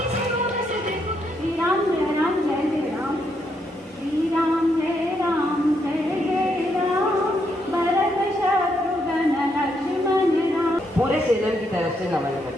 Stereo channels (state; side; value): normal; both; correlation 0.77